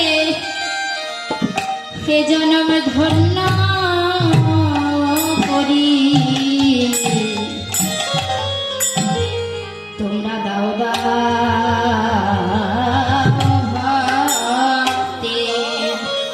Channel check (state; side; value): identical; both; correlation 1.00